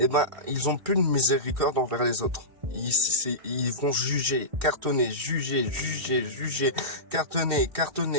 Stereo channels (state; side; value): late; left; 1.6 ms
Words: ben, ils ont plus de miséricorde envers les autres. Ils vont juger, cartonner, juger, cartonner,